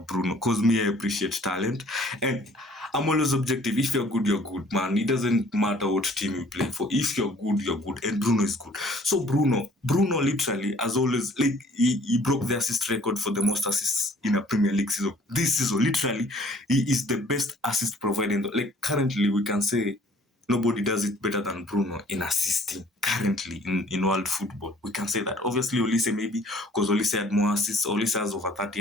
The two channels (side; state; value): both; normal; correlation 0.55